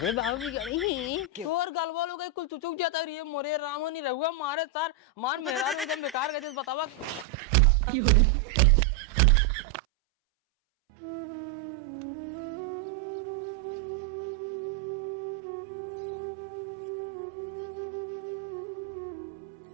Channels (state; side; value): drops out; left; at 7.2 s